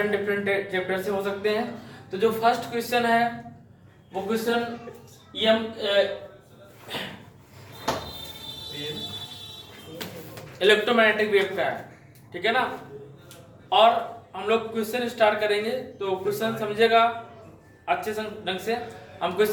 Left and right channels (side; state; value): both; identical; correlation 1.00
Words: चैप्टर से हो सकते हैं। तो जो फर्स्ट क्वेश्चन है वो क्वेश्चन इलेक्ट्रोमैग्नेटिक वेव का है, ठीक है ना। और हम लोग क्वेश्चन स्टार्ट करेंगे तो क्वेश्चन समझेगा अच्छे ढंग से। हम